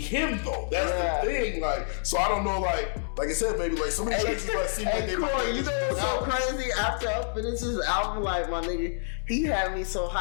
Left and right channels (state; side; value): silent; right; digital silence